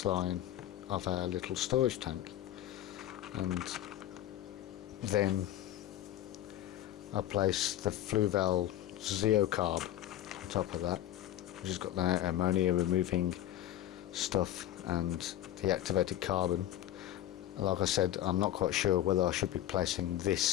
of our little storage tank. And then I place the Fluval Zeo-Carb on top of that, which has got the ammonia removing stuff and the activated carbon. Like I said, I'm not quite sure whether I should be placing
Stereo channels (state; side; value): quieter; right; 12.5 dB